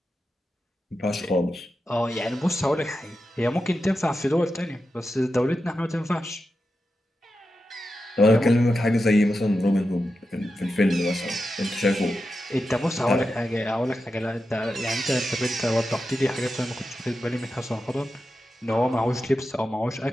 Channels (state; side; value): normal; both; correlation 0.90